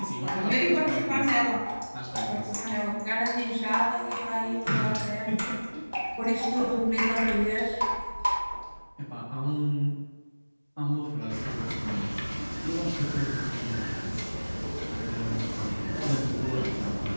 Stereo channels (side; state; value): both; inverted; correlation -1.00